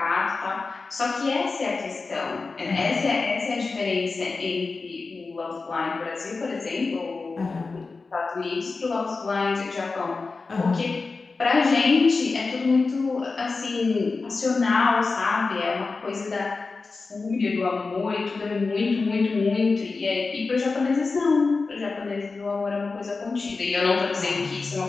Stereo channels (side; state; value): right; quieter; 4.1 dB